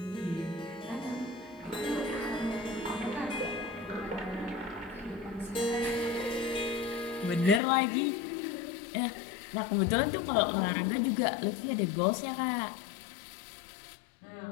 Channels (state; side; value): drops out; right; at 7.6 s